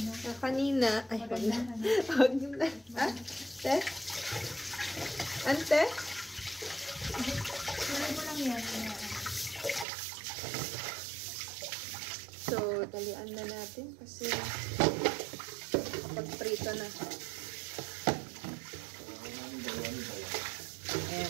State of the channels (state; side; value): drops out; left; at 9.9 s